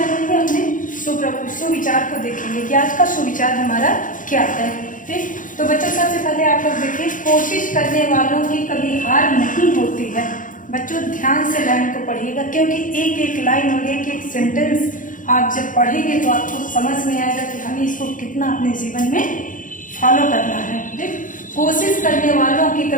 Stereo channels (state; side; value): late; right; 0.38 ms